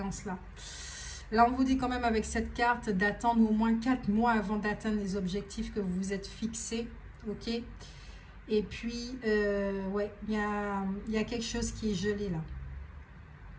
Là, on vous dit quand même avec cette carte d'attendre au moins 4 mois avant d'atteindre les objectifs que vous vous êtes fixés, ok? Et puis, ouais, il y a quelque chose qui est gelé là.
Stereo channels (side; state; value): both; identical; correlation 1.00